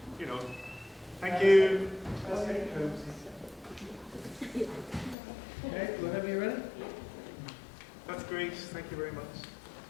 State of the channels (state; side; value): drops out; right; at 5.2 s